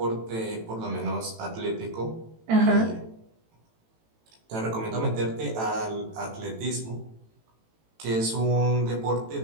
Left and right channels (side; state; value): left; late; 18 ms